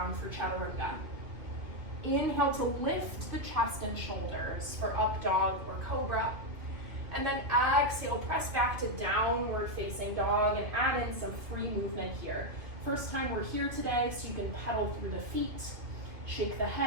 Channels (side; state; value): left; late; 2.7 ms